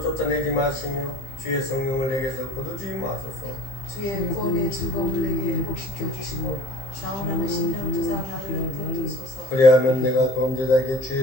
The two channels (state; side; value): late; right; 15 ms